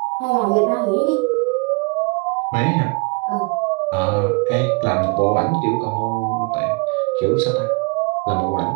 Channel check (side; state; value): left; quieter; 30.7 dB